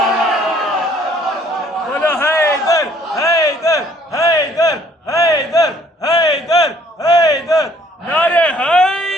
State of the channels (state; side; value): normal; both; correlation 0.61